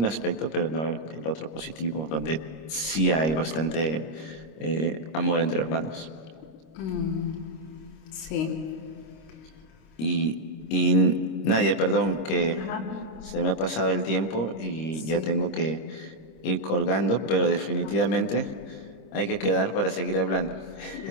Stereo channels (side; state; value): right; late; 26 ms